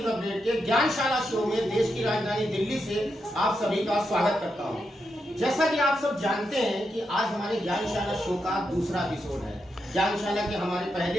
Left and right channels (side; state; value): both; normal; correlation 0.84